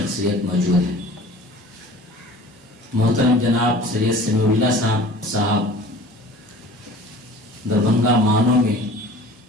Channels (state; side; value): normal; both; correlation 0.43